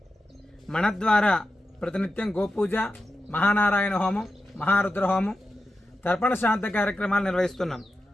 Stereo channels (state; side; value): normal; both; correlation 0.90